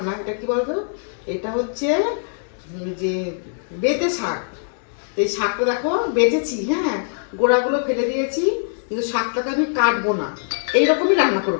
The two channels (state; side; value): silent; right; digital silence